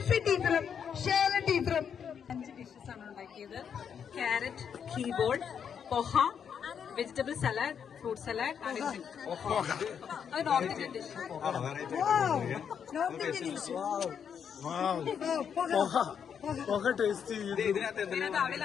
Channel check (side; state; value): right; quieter; 7.6 dB